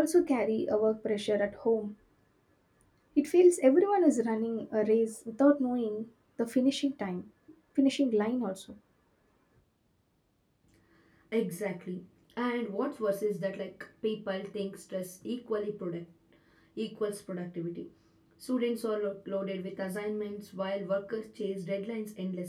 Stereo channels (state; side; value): identical; both; correlation 1.00